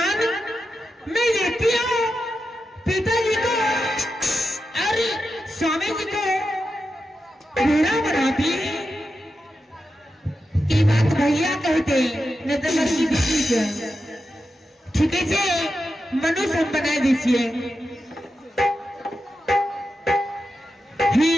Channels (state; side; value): normal; both; correlation 0.89